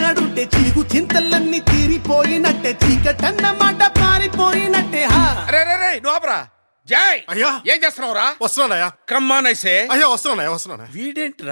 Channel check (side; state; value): both; inverted; correlation -1.00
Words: చీగు చింతలన్నీ తీరిపోయినట్టే చీకటన్నమాట పారిపోయినట్టే. జై అయ్యా ఏం చేస్తున్నావురా? వస్తున్నానయ్యా. కమ్మానైసే అయ్యా వస్తున్నా.